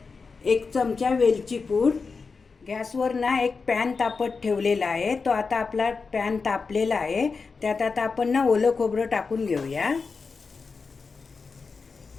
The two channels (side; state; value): right; quieter; 4.7 dB